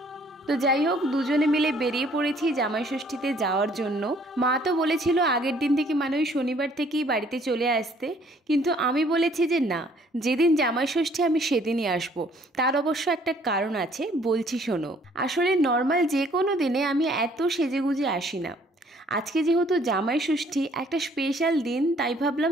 তো যাই হোক, দুজনে মিলে বেরিয়ে পড়েছি জামাই ষষ্ঠীতে যাওয়ার জন্য। মা তো বলেছিল আগের দিন থেকে মানে ওই শনিবার থেকেই বাড়িতে চলে আসতে, কিন্তু আমি বলেছি যে না, যেদিন জামাই ষষ্ঠী আমি সেদিনই আসবো। তার অবশ্য একটা কারণ আছে, বলছি শোনো। আসলে নর্মাল যে কোনো দিনে আমি এত সেজেগুজে আসি না। আজকে যেহেতু জামাই ষষ্ঠী একটা স্পেশাল দিন, তাই ভাবলাম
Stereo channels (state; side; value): normal; both; correlation 0.61